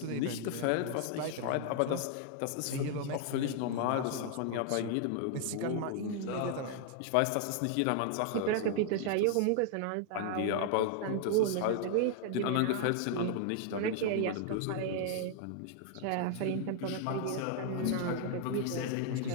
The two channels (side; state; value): both; different; correlation 0.00